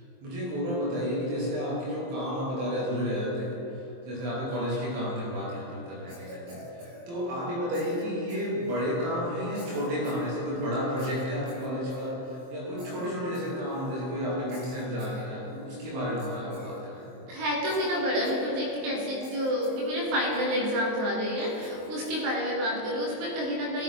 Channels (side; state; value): left; late; 23 ms